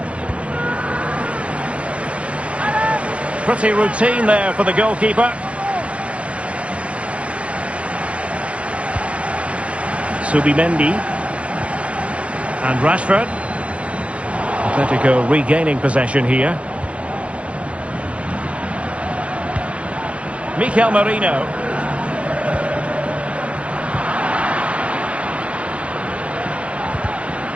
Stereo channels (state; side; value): late; left; 0.062 ms